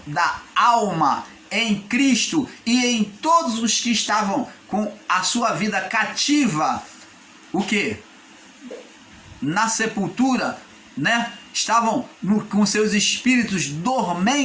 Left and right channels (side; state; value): both; identical; correlation 1.00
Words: da alma em Cristo e em todos os que estavam com a sua vida cativa, o quê? Na sepultura, né? Estavam com seus espíritos